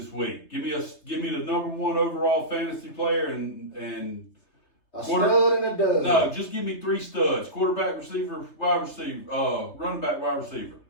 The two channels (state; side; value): late; right; 3.3 ms